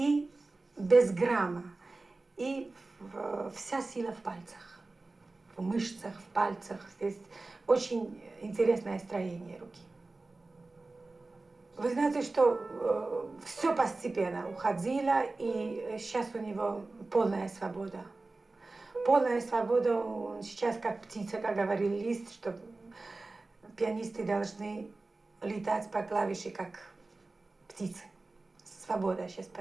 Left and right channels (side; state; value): left; quieter; 3.3 dB